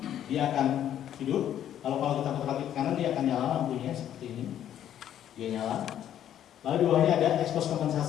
dia akan hidup. Kalau kita putar ke kanan, dia akan nyala lampunya seperti ini. Dia nyala. Lalu di bawahnya ada expose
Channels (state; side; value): quieter; right; 10.7 dB